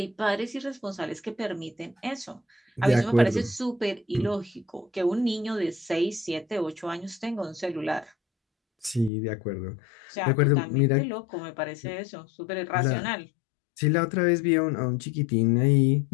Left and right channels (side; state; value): right; drops out; at 9.1 s